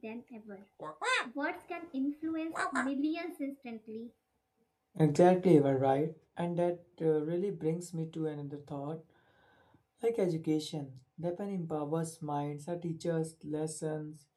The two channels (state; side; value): identical; both; correlation 1.00